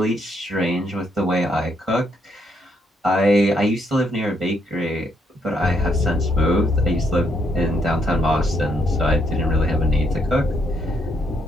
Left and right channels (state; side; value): normal; both; correlation 0.74